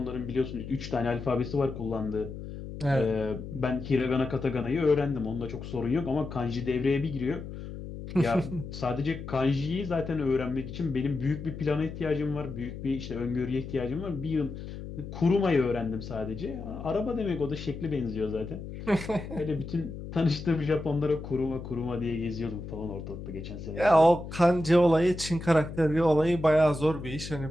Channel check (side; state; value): left; noise; hum, 10 dB below the sound